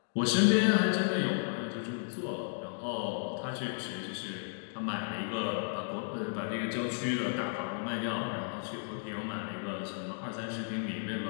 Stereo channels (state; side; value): silent; right; digital silence